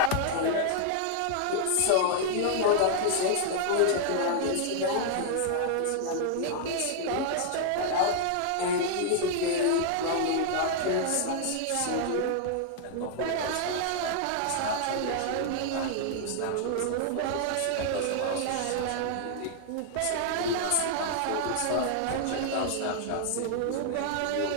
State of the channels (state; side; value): different; both; correlation 0.00